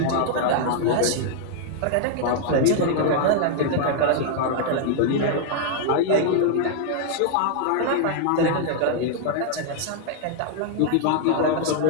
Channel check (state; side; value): different; both; correlation 0.00